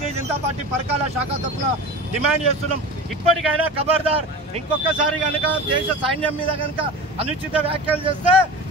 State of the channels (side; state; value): both; normal; correlation 0.32